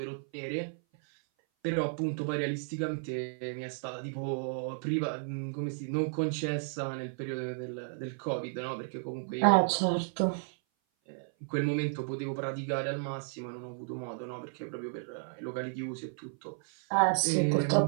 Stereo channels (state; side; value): silent; left; 56 dB below the other